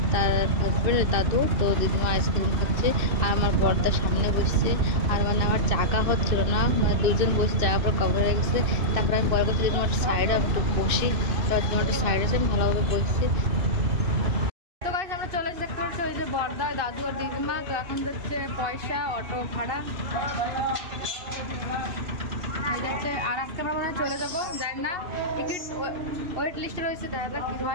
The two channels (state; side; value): late; left; 2.6 ms